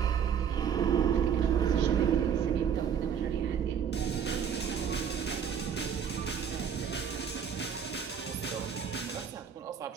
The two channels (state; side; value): quieter; left; 7.8 dB